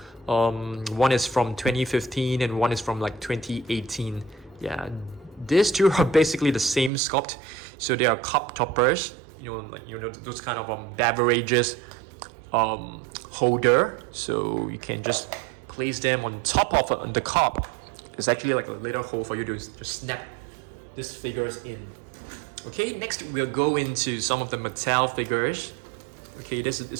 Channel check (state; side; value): drops out; left; at 6.9 s